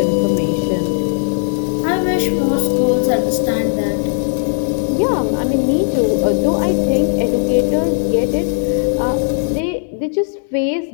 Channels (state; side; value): silent; right; digital silence